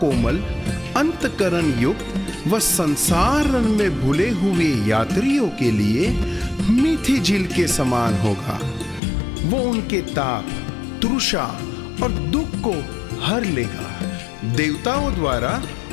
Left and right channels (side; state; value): right; drops out; at 9.0 s